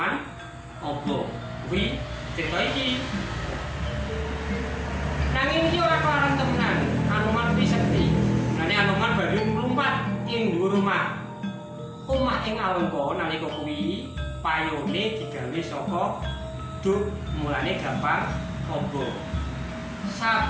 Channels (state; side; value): identical; both; correlation 1.00